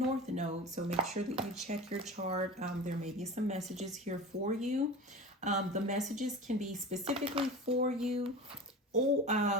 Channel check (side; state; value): both; normal; correlation 0.32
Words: Node. So make sure that you check your chart. There may be some messages here for you. The messages can be specifically for you or